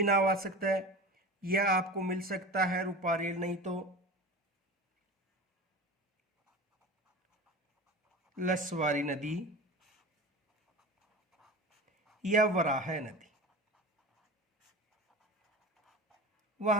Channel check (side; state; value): both; normal; correlation 0.31